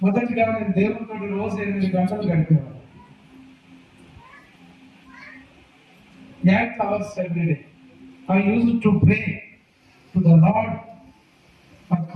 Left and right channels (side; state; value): both; identical; correlation 1.00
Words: మొదటిగా నేను దేవునితో రోజు 8 గంటలు గడిపేవాడు. 8 hours every day. I used to pray to the Lord for